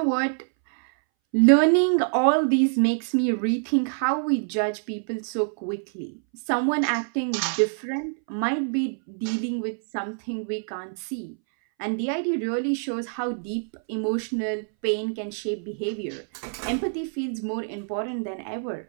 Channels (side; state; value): left; silent; 61 dB below the other